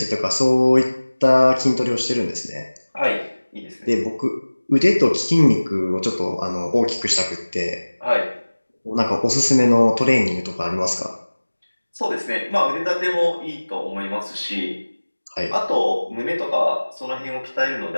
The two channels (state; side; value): inverted; both; correlation -1.00